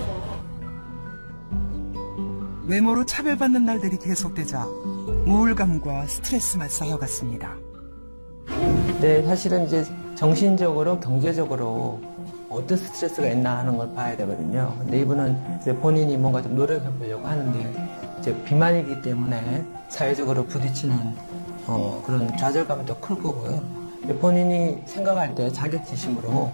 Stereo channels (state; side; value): inverted; both; correlation -1.00